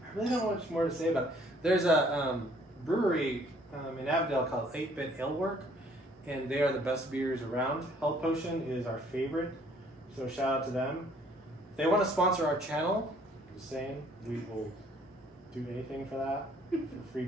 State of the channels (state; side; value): normal; both; correlation 0.60